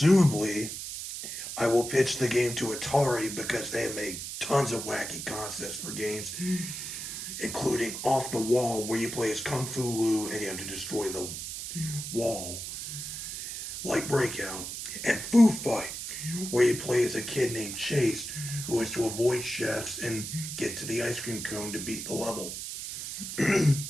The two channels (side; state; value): right; noise; hiss, 7 dB below the sound